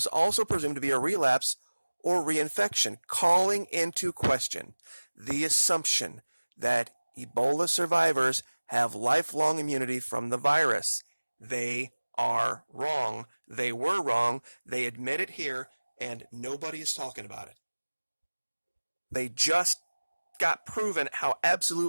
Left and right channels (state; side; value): inverted; both; correlation -1.00